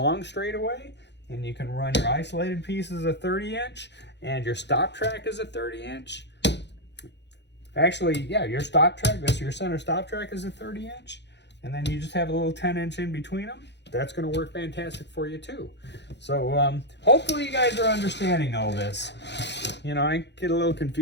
straightaway and you can run your isolated piece as a 30-inch and your stop track is a 30-inch. Actually, yeah, your stop track, your center stop track is a 30-inch, and then you just have a little 10-inch in between them. That's going to work fantastic for you too. So hopefully you guys are understanding all this. You know, I get a little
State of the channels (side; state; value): right; late; 0.50 ms